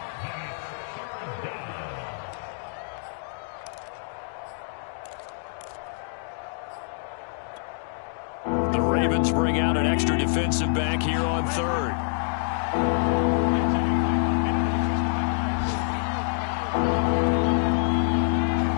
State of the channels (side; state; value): right; silent; digital silence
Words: Ravens bring out an extra defensive back here on third.